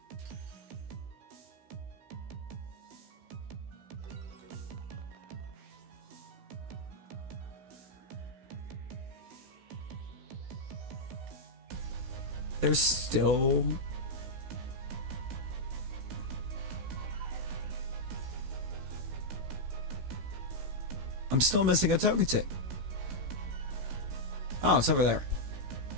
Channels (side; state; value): left; late; 16 ms